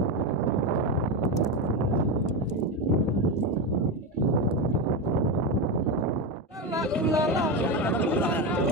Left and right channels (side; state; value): both; normal; correlation 0.14